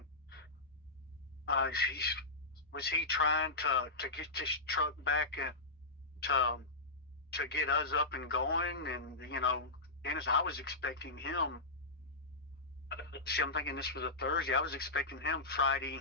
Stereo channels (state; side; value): quieter; right; 3.0 dB